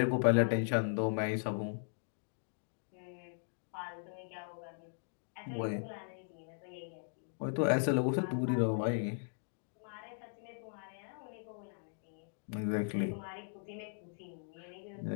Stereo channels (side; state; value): right; silent; digital silence